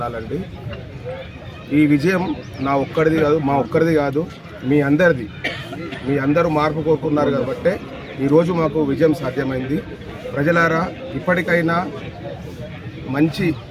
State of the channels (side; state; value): both; identical; correlation 1.00